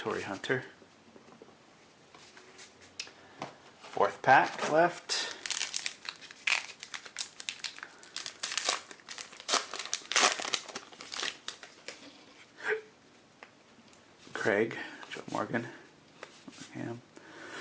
Hunter. 4th pack left. Craig, Joe Morgan,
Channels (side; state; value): both; identical; correlation 1.00